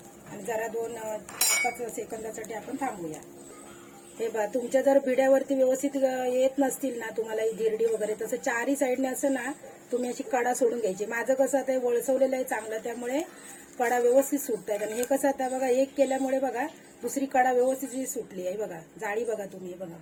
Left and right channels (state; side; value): identical; both; correlation 1.00